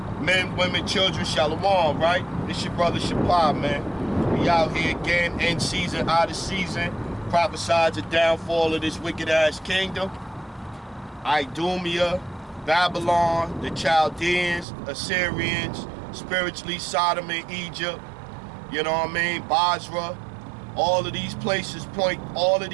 men, women, children, shalom, right? This your brother Shapar, man. We out here again, in season, out of season, prophesied the downfall of this wicked-ass kingdom. Idumea, Babylon, the Chaldeans, Assyrians, spiritually Sodom and Egypt, you know what I mean, Basra. All of these places point, all of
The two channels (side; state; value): left; drops out; at 14.7 s